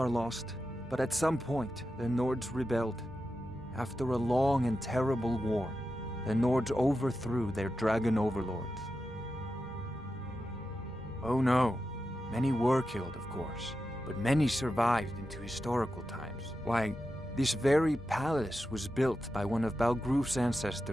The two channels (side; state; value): both; normal; correlation 0.90